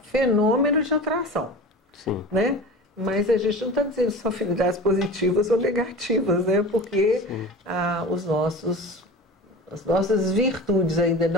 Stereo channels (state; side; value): normal; both; correlation 0.34